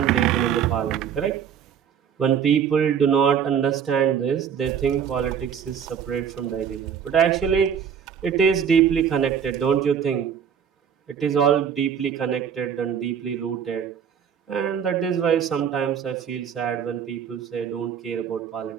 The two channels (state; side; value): quieter; left; 7.9 dB